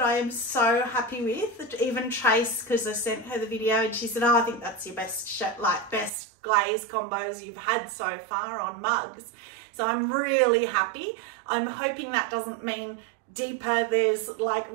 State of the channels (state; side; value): drops out; left; at 6.1 s